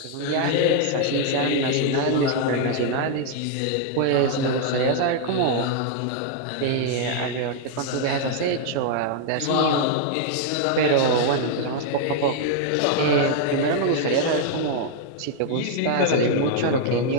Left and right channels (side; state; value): both; different; correlation 0.00